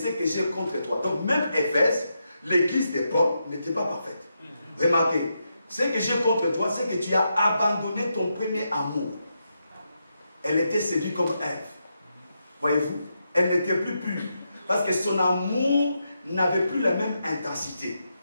que j'ai contre toi. Donc même Éphèse, l'église de Paul, n'était pas parfaite. Remarquez, ce que j'ai contre toi, c'est que tu as abandonné ton premier amour. Elle était séduite comme Ève. Voyez-vous, elle n'était plus pure. Parce que son amour n'avait plus la même intensité.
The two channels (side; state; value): both; inverted; correlation -0.84